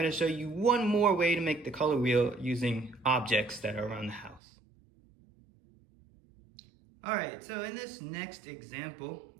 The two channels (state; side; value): drops out; left; at 4.4 s